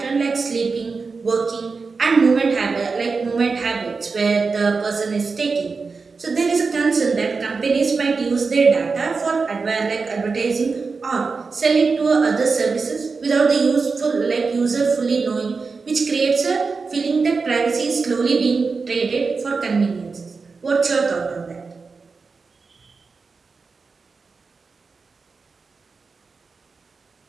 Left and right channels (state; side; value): quieter; left; 4.6 dB